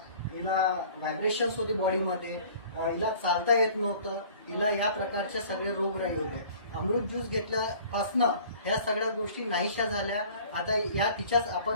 हिला व्हायब्रेशन्स होते बॉडीमध्ये, हिला चालता येत नव्हतं, हिला या प्रकारचे सगळे रोगराई होते। अमृत ज्यूस घेतल्यापासनं ह्या सगळ्या गोष्टी नाहीशा झाल्या। आता या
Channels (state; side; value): inverted; both; correlation -0.49